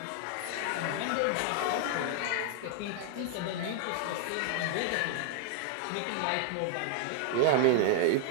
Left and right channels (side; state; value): both; different; correlation 0.00